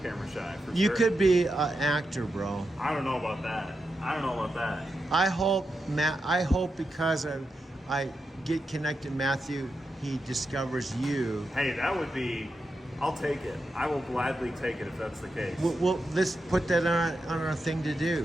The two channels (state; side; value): normal; both; correlation 0.87